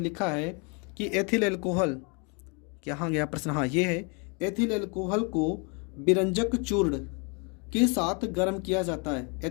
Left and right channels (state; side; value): quieter; right; 33.7 dB